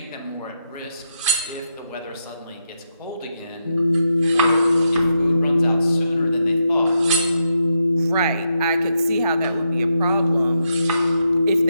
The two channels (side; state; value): both; inverted; correlation -0.83